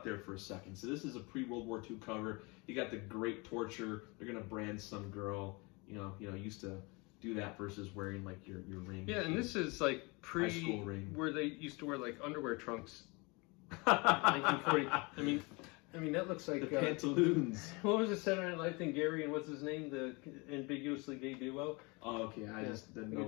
there for a second. So this is a pre-World War II cover. You got the great torture. They're gonna brand some girl. You know, used to do that versus wearing like your ring. Yeah, and this is like High school ring. where they used to wear like underwear trunks. 1940. I mean that looks like the pantaloons. What was the Saturday Night Live thing? Gary and what's his name? The ambiguously gay duo. Oh, okay. I just didn't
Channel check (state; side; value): quieter; right; 27.5 dB